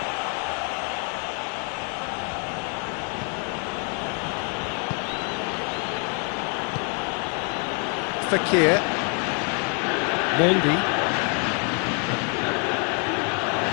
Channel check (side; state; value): right; quieter; 37.2 dB